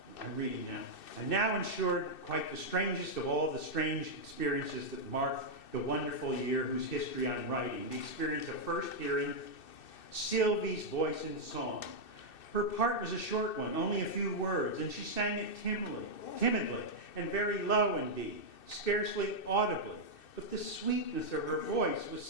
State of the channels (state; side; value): late; right; 2.6 ms